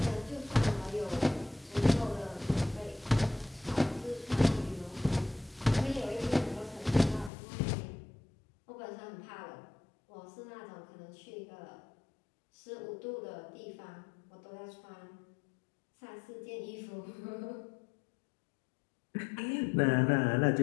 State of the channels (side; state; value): right; drops out; at 7.3 s